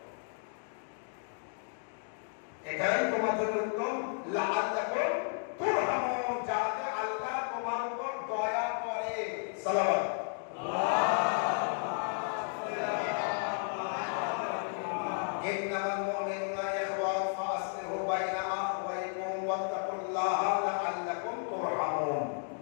এটাই তোমার জন্য উত্তম। লাআল্লাকুম তুরহামুন, যাতে আল্লাহ তোমার উপর দয়া করে। সালাওয়াত। ইন্নামাল মুমিনুনা ইখওয়া ফাসলিহু বাইনা আখওয়াইকুম ওয়াত্তাকুল্লাহ লাআল্লাকুম তুরহামুন।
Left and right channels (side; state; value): right; silent; 56 dB below the other